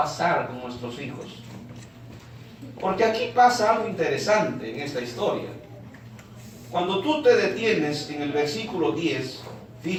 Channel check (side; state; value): both; identical; correlation 1.00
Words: con nuestros hijos? Porque aquí pasa algo interesante en esta historia. Cuando tú te detienes en el versículo 10,